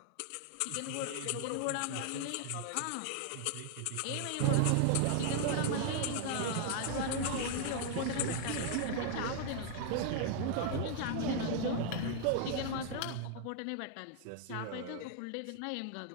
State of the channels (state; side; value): different; both; correlation 0.00